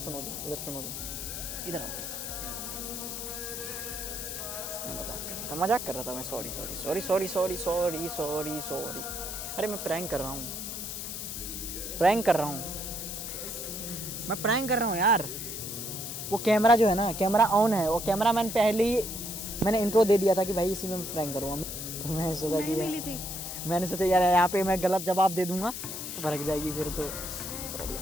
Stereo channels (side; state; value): left; noise; hiss, 6 dB below the sound